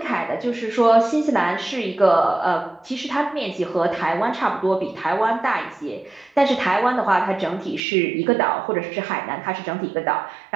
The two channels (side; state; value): left; drops out; at 7.8 s